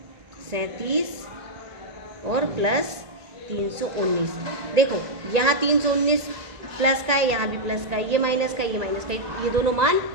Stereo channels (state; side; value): late; left; 1.9 ms